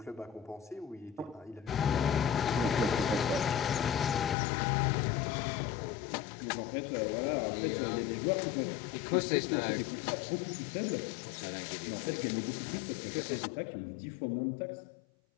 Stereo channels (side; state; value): right; drops out; at 4.4 s